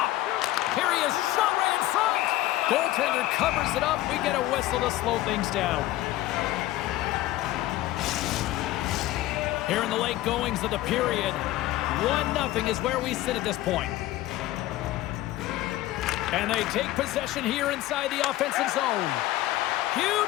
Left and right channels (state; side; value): quieter; right; 15.7 dB